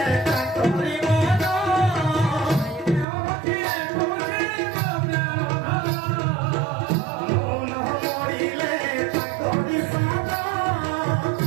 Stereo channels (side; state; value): left; drops out; at 3.1 s